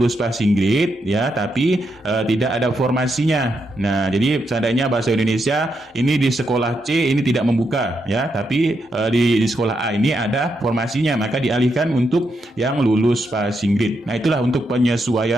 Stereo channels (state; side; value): normal; both; correlation 0.82